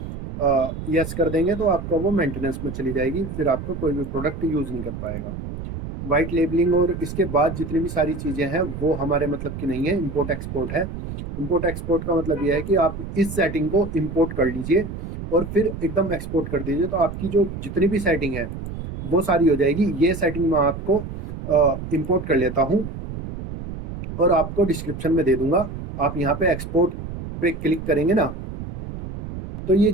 यस कर देंगे तो आपका वो मेंटेनेंस में चली जाएगी, फिर आपका कोई भी प्रोडक्ट यूज़ नहीं कर पाएगा। वाइट लेबलिंग और इसके बाद जितनी भी सारी चीज़ें हैं वो हमारे मतलब की नहीं है, इंपोर्ट एक्सपोर्ट है। इंपोर्ट एक्सपोर्ट का मतलब ये है कि आप इस सेटिंग को इंपोर्ट कर लीजिए और फिर एकदम एक्सपोर्ट कर दीजिए, तो आपकी जो जितनी भी सेटिंग है वो सारी हो जाएगी। ये सेटिंग मैं आपको इंपोर्ट कर लेता हूँ और आपको डिस्क्रिप्शन में दे दूंगा। आप यहाँ पे एक्सपोर्ट पे क्लिक करेंगे ना, तो ये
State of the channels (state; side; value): noise; right; rumble, 8 dB below the sound